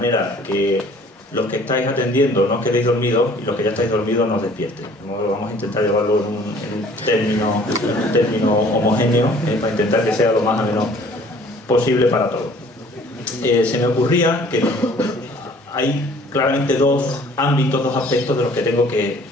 que los que estáis atendiendo no os quedéis dormidos y los que ya estáis dormidos no os despierten. Vamos a intentar llevarlo en un término homogéneo, para intentar que sea lo más ameno posible para todos. Se me ocurría que hay claramente dos ámbitos, dos aspectos de los que tengo que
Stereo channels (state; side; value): normal; both; correlation 0.54